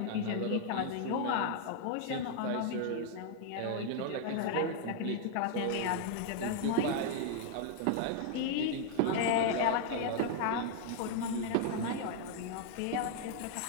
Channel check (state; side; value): different; both; correlation 0.00